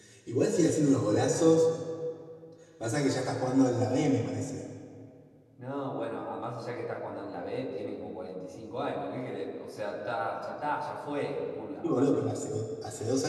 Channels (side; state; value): both; identical; correlation 1.00